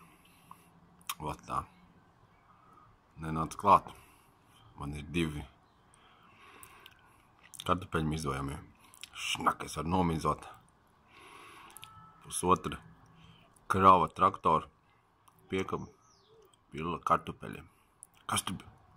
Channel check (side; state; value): both; identical; correlation 1.00